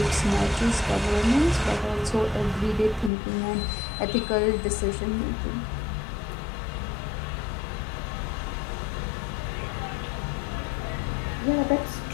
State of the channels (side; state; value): right; drops out; at 3.1 s